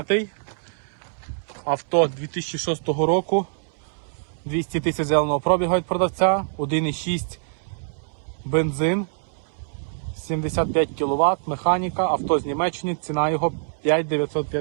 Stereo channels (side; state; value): left; silent; 62 dB below the other